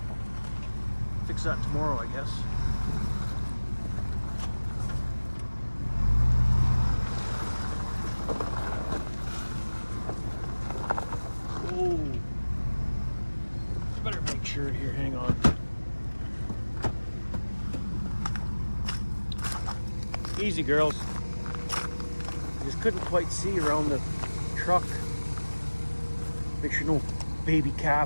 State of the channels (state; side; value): inverted; both; correlation -1.00